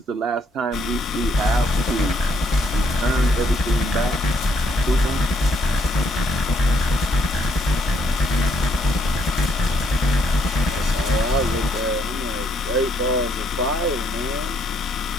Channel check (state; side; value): normal; both; correlation 0.71